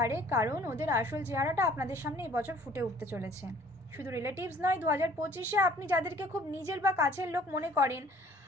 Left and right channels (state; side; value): normal; both; correlation 0.54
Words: কারণ ওদের আসল চেহারাটা আপনাদের সামনে এবছর ফুটে উঠতে চলেছে। শুধু রিলেটিভস নয়, 2025-এ আপনি যাদেরকে খুব নিজের বা কাছের লোক মনে করেন